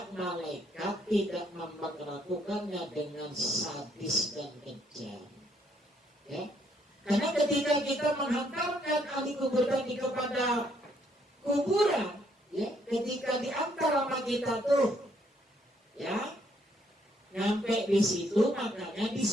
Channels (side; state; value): both; normal; correlation 0.70